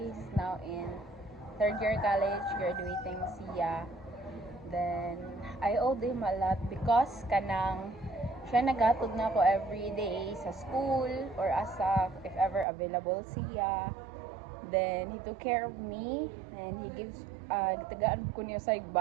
He's now in third year college, graduating siya. Then, I owed him a lot because kanang siya nagatod na ako every day sa school or asa if ever available siya. Then, he took care of me and he gives, tagaan ko niya sa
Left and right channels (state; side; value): drops out; left; at 12.7 s